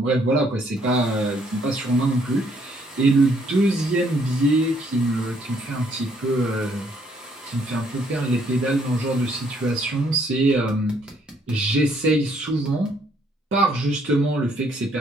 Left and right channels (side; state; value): both; normal; correlation 0.67